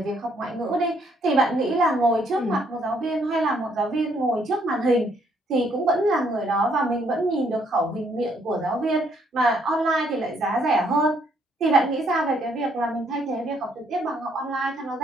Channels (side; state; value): both; normal; correlation 0.69